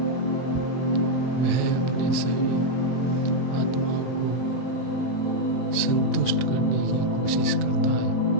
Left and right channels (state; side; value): late; right; 23 ms